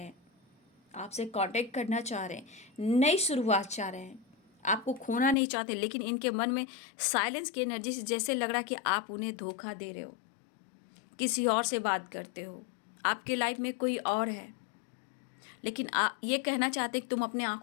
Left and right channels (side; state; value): right; drops out; at 5.4 s